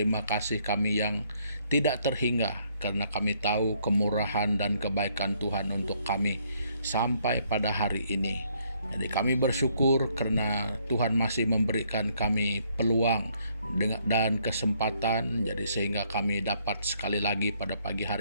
kasih kami yang tidak terhingga, karena kami tahu kemurahan dan kebaikan Tuhan untuk kami sampai pada hari ini. Jadi kami bersyukur karena Tuhan masih memberikan kami peluang dan kesempatan, jadi sehingga kami dapat sekali lagi pada pagi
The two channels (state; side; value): inverted; both; correlation -0.68